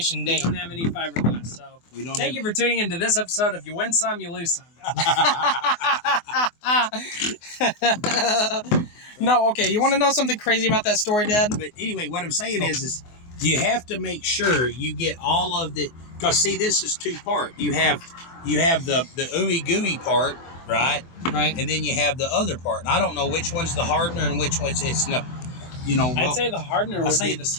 We date. don't have any fiberglass, so We don't thank you for tuning into this episode. If you win some, you lose some. No, okay. You want to know something crazy about that story, Dad? But anyway, what I'm saying is you have to make sure you get all of the, because see, this is two-part. You have the ooey gooey part, right? Right. And then you have the other part. And I don't know which one's the hardener and which one's it's not. I'd say the hardener would be the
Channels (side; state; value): right; late; 24 ms